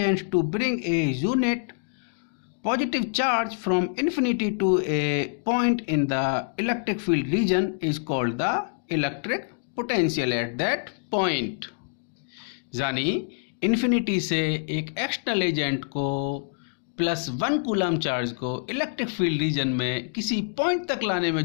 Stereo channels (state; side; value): silent; right; digital silence